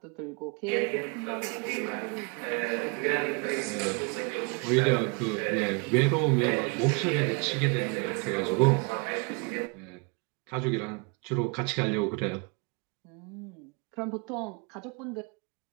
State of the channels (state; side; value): quieter; left; 33.0 dB